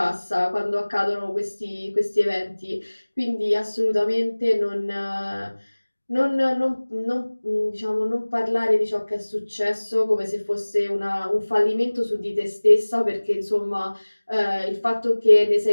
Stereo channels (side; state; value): both; inverted; correlation -1.00